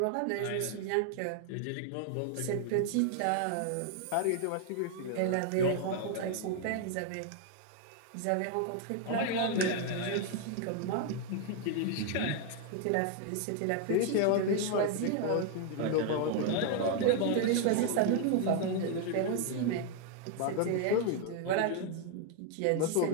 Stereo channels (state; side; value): different; both; correlation 0.00